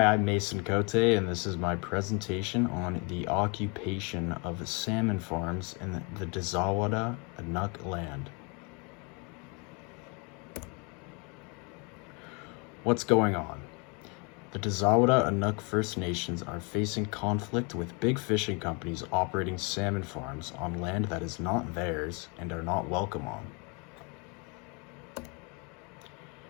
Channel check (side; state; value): right; quieter; 32.3 dB